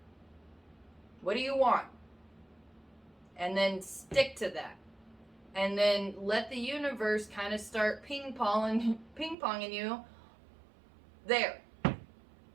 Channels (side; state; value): left; drops out; at 9.3 s